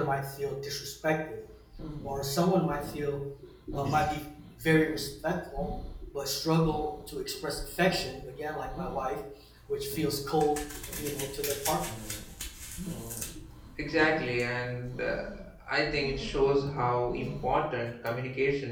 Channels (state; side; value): identical; both; correlation 1.00